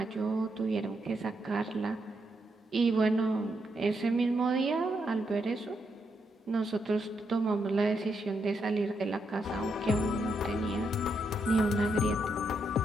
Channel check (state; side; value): normal; both; correlation 0.80